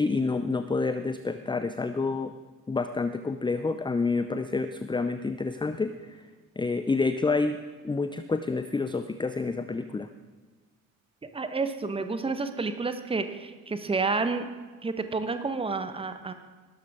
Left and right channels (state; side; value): normal; both; correlation 0.65